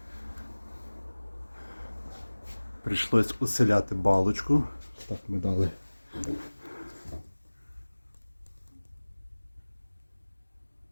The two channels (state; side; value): inverted; both; correlation -1.00